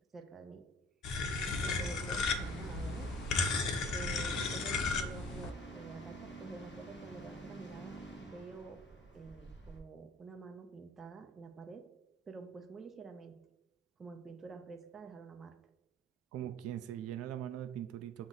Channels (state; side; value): normal; both; correlation 0.50